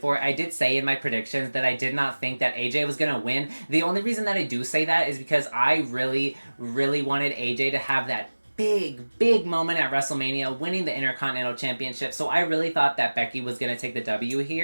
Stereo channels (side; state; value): both; inverted; correlation -1.00